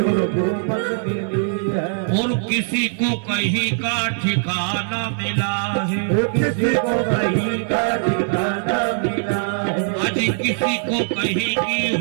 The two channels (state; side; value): silent; left; 59 dB below the other